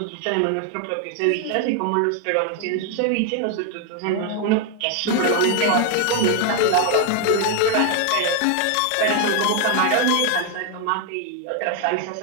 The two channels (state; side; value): different; both; correlation 0.01